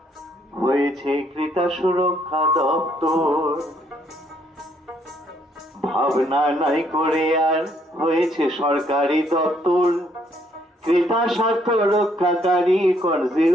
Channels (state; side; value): normal; both; correlation 0.69